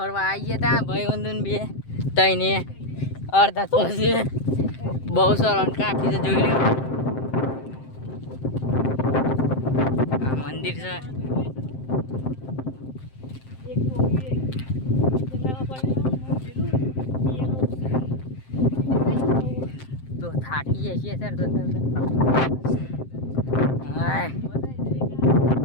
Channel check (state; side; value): late; right; 7.7 ms